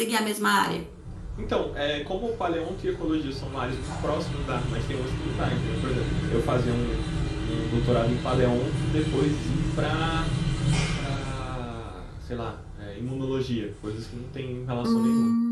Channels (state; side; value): identical; both; correlation 1.00